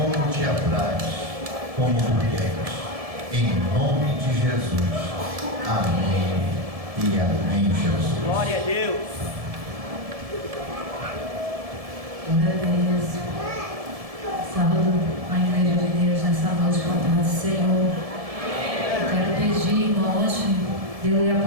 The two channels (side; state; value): left; late; 1.7 ms